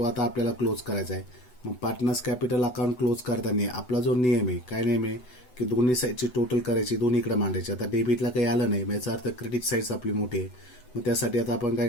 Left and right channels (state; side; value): late; right; 8.0 ms